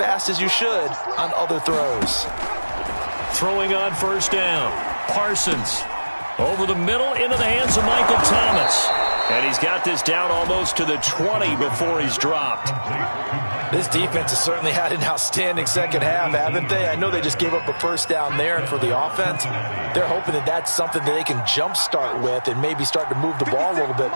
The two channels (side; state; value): both; inverted; correlation -1.00